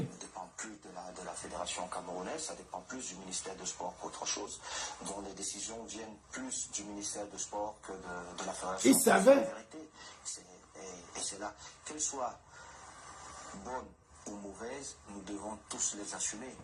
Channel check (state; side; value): identical; both; correlation 1.00